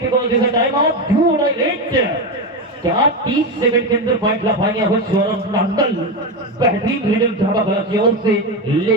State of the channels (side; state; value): both; normal; correlation 0.14